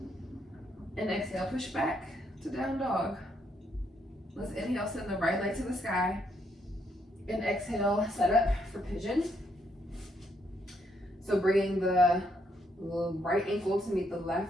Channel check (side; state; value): both; normal; correlation 0.74